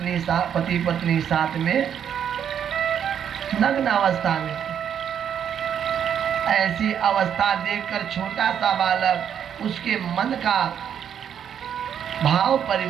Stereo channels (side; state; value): left; quieter; 8.7 dB